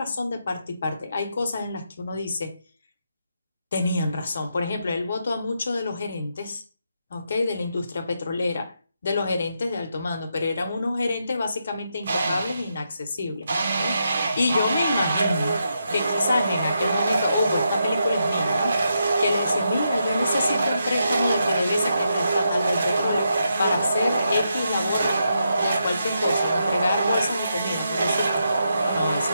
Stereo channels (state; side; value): inverted; both; correlation -0.82